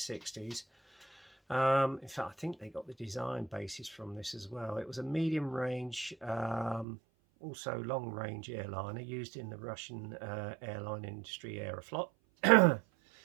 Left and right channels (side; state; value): left; drops out; at 6.9 s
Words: In fact, I think they got the design basis from this as well. It was a medium range, also long range airliner used in the Russian airline industry, Aeroflot.